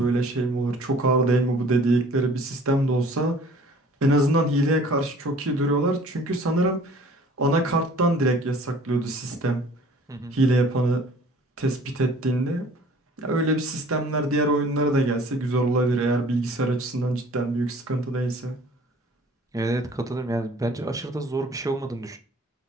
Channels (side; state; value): both; normal; correlation 0.51